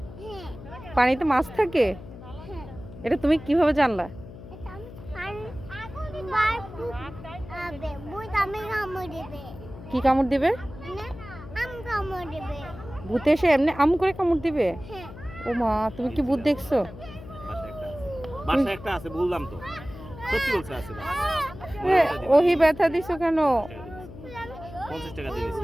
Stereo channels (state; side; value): noise; left; hum, 15 dB below the sound